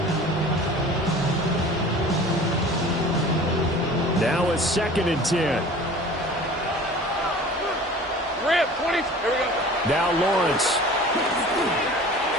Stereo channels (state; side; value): normal; both; correlation 0.43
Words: Now a 2nd and 10. Rip, 20. Here we go. Now Lawrence.